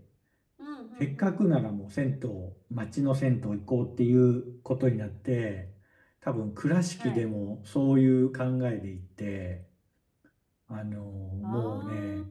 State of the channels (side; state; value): both; identical; correlation 1.00